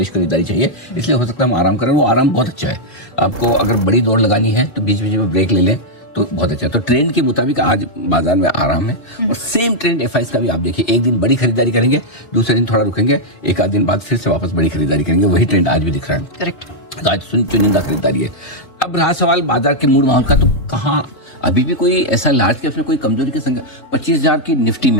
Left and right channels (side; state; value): right; late; 3.8 ms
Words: खरीदारी चाहिए, इसलिए हो सकता है हम आराम करें। वो आराम बहुत अच्छा है। आपको अगर बड़ी दौड़ लगानी है तो बीच बीच में ब्रेक ले लें तो बहुत अच्छा है। तो ट्रेंड के मुताबिक आज बाजार में आराम है। और सेम ट्रेंड एफआईएस का भी आप देखिए, एक दिन बड़ी खरीदारी करेंगे, दूसरे दिन थोड़ा रुकेंगे, एक आध दिन बाद फिर से वापस बड़ी खरीदारी करेंगे। वही ट्रेंड आज भी दिख रहा है। करेक्ट। आज चुनिंदा खरीदारी है। अब रहा सवाल बाजार के मूड माहौल का, तो कहाँ अभी भी कोई ऐसा लार्ज कैप में कोई कमजोरी के संग 25,000 की निफ्टी